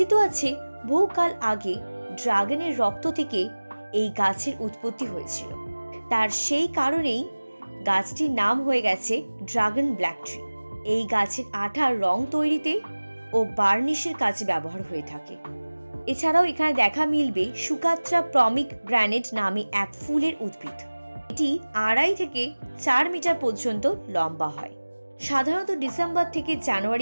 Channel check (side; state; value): both; inverted; correlation -1.00